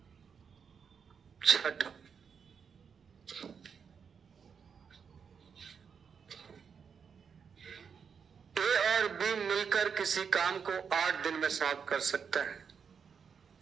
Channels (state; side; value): quieter; left; 6.5 dB